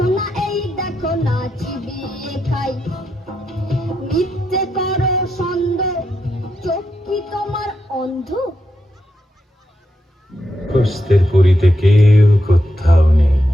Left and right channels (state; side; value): normal; both; correlation 0.84